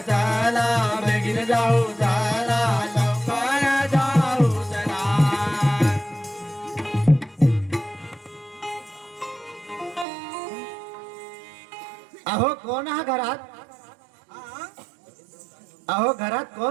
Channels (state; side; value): drops out; left; at 10.1 s